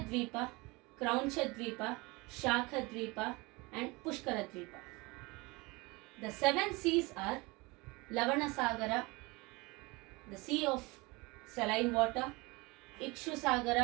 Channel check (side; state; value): left; quieter; 24.7 dB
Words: Kraunchadvipa, Shakhadvipa and Pushkaradvipa. The 7 seas are Lavanasagara, the sea of saline water,